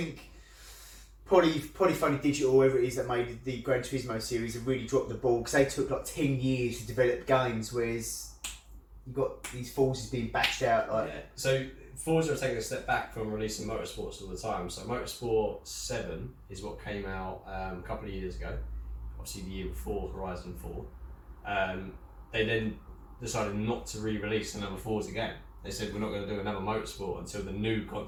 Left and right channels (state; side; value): identical; both; correlation 1.00